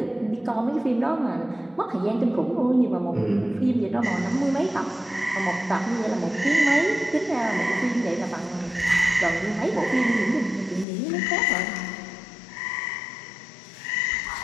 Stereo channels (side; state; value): right; drops out; at 10.9 s